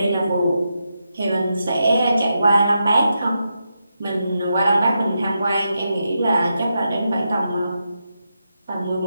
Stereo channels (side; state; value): both; inverted; correlation -0.86